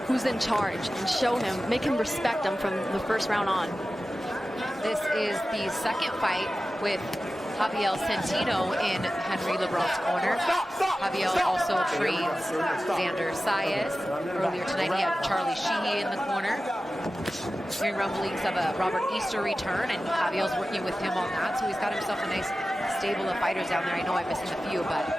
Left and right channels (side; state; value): both; normal; correlation 0.94